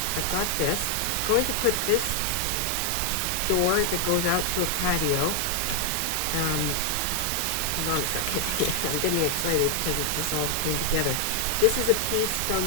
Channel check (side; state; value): both; different; correlation 0.00